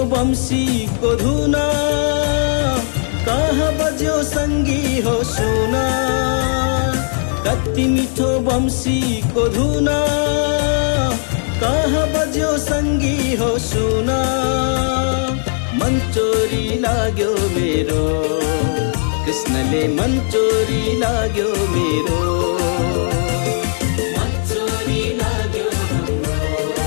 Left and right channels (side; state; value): right; silent; digital silence